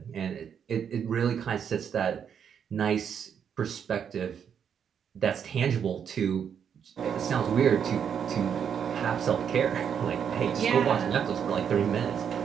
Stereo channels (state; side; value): quieter; left; 7.8 dB